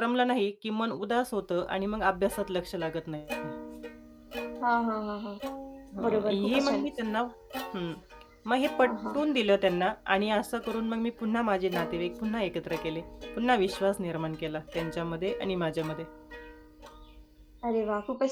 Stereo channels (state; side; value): identical; both; correlation 1.00